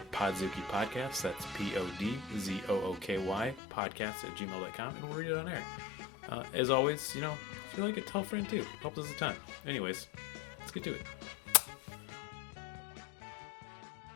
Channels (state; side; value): drops out; right; at 3.6 s